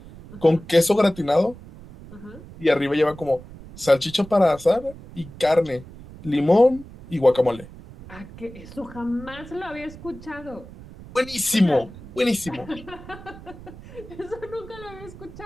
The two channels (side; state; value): right; noise; rumble, 17 dB below the sound